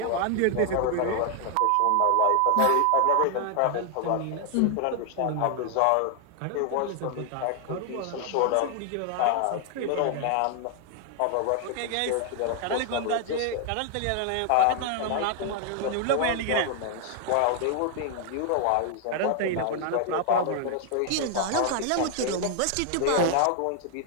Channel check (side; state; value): both; different; correlation 0.00